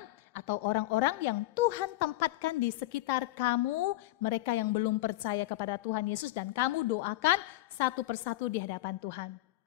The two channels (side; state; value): right; quieter; 17.4 dB